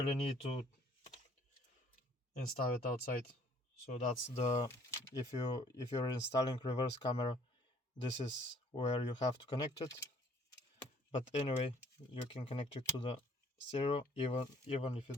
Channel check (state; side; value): normal; both; correlation 0.59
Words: need to install it outside. So that's the, if you're installing reverse camera, this is where you have to connect it. But anyway, you can connect it to the stereo even if you